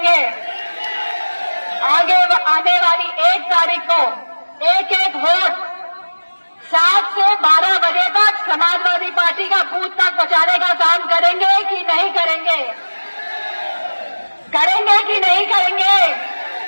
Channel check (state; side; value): inverted; both; correlation -1.00